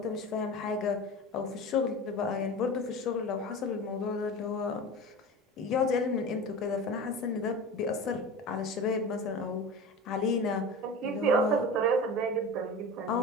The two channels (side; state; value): both; normal; correlation 0.31